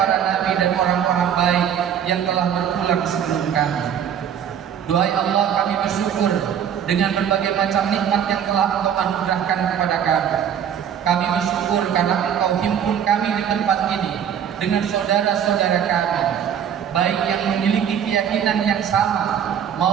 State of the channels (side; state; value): left; quieter; 8.7 dB